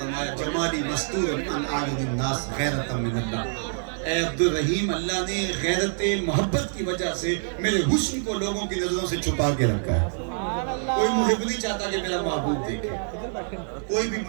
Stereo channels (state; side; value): silent; left; digital silence